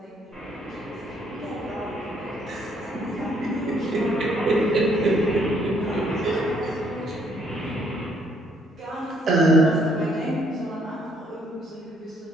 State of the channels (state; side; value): normal; both; correlation 0.68